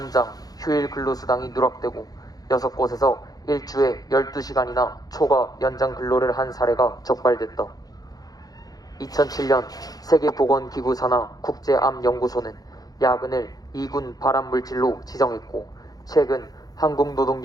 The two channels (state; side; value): late; right; 0.18 ms